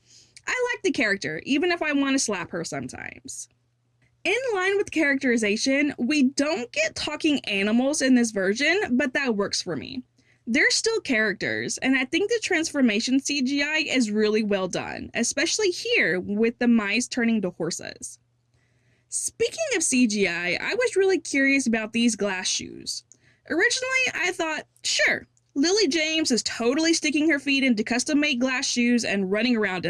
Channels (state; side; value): identical; both; correlation 1.00